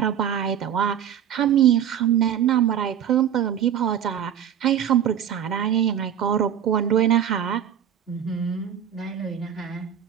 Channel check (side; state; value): left; quieter; 9.4 dB